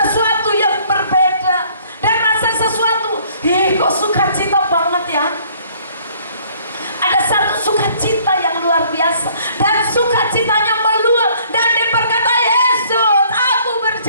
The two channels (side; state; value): both; inverted; correlation -0.59